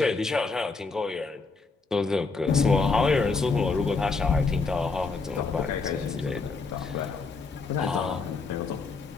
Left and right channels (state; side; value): quieter; right; 4.3 dB